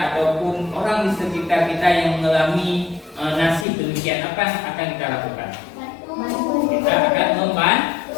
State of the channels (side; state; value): right; drops out; at 3.7 s